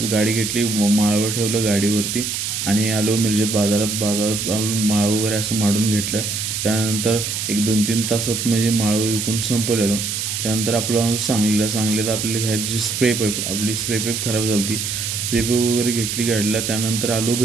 गाडी घेतली, माळव ठेवलं गाडीवरती आणि आलो मिरजेत बाजारात आलो, माळव वगैरे असं माडून घेतलं. त्यानंतर एक 2-3 तासात म्हणजे माळव विकून संपवलेलो. त्यानंतर आपलं सांगलीत आपल्याला घ्यायची स्प्रे पाईप खराब झाली होती. स्प्रे पाईप वगैरे घेतली गाडीला. त्यानंतर आलो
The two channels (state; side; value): noise; right; hiss, 3 dB below the sound